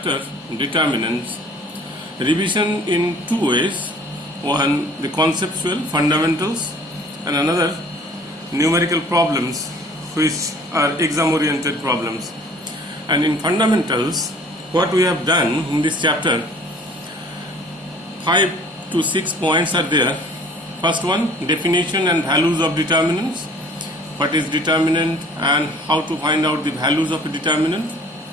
Determinants. Revision in two ways. One, the conceptual fundamentals, and another, numerical problems, which are exam oriented problems. And in fundamentals, what we have done in this chapter, 5 to 6 points are there. First one, definition and values of determinants. What is determinant and how to find out the values of a determinant,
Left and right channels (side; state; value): both; normal; correlation 0.52